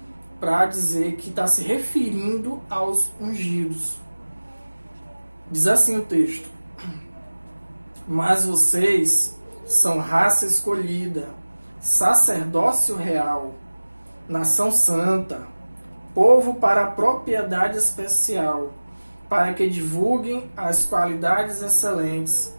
para dizer que está se referindo aos ungidos. Diz assim o texto: mas vocês são raça escolhida, sacerdócio real, nação santa, povo para propriedade especial, para que divulguem as qualidades excelentes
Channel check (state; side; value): inverted; both; correlation -1.00